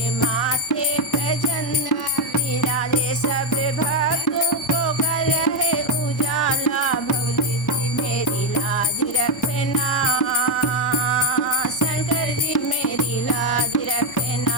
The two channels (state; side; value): normal; both; correlation 0.07